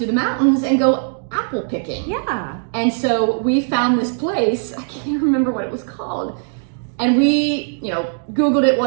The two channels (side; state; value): left; silent; digital silence